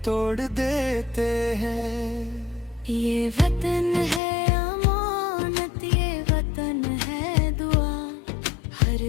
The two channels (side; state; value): right; drops out; at 4.2 s